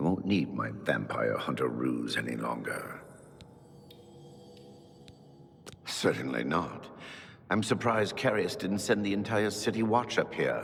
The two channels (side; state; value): both; identical; correlation 1.00